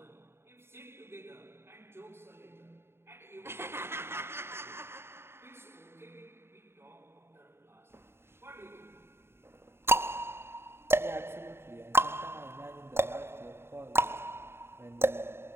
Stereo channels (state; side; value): late; left; 0.12 ms